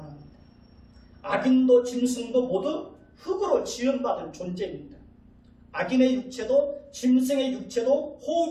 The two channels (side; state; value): both; identical; correlation 1.00